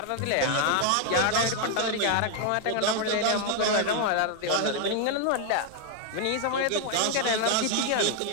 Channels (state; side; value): different; both; correlation 0.00